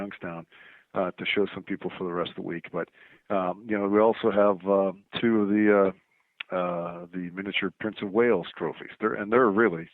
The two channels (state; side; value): identical; both; correlation 1.00